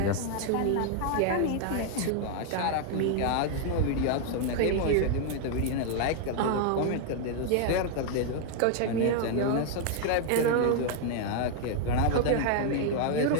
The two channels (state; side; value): different; both; correlation 0.00